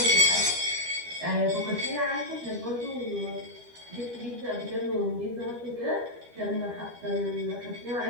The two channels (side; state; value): left; late; 12 ms